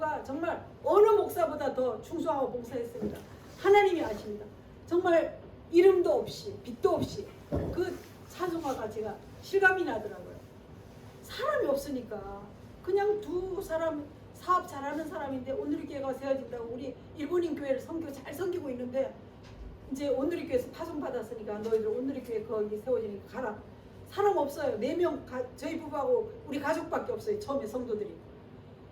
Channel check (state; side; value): identical; both; correlation 1.00